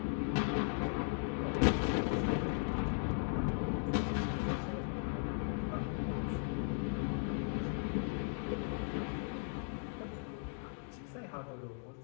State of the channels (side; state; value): right; silent; 53 dB below the other